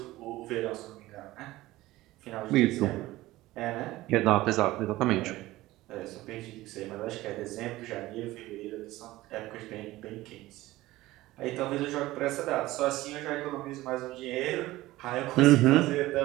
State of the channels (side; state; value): left; quieter; 17.5 dB